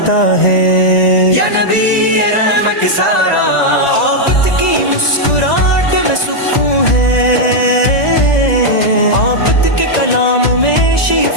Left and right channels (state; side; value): late; right; 1.9 ms